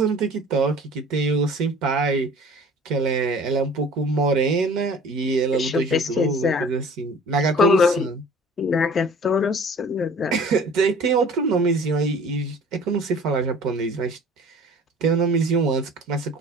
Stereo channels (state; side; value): normal; both; correlation 0.47